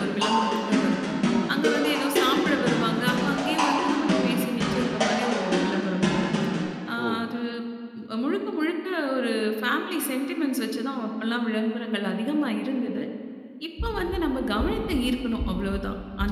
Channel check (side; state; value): both; identical; correlation 1.00